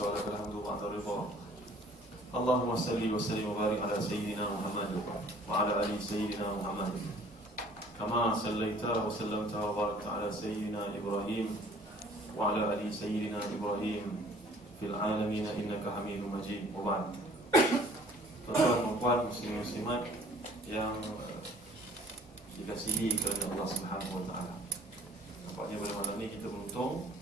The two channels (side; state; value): both; normal; correlation 0.53